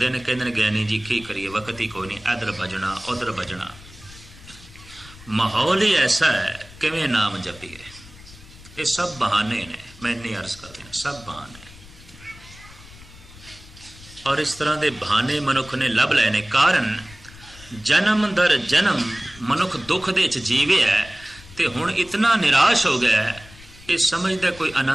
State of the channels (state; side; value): noise; left; rumble, 20 dB below the sound